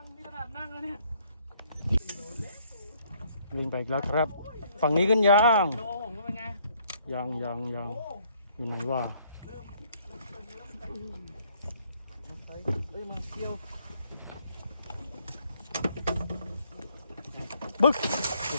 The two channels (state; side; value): inverted; both; correlation -0.66